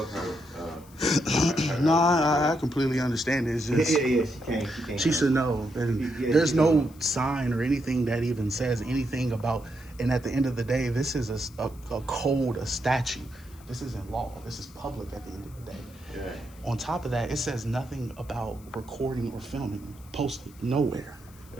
her. No, I completely understand it. It's just, yeah, she can't. she should know. And there's no sign or anything that even says anything about, and at the end of the day, this is a code, a statute. This isn't law. This is public at the end of the day. Right. On top of that, it says nothing about recording or filming. Posted nowhere.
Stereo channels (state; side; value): noise; left; hiss, 25 dB below the sound